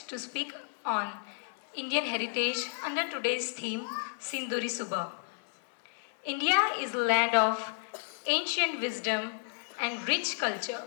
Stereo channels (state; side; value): silent; right; digital silence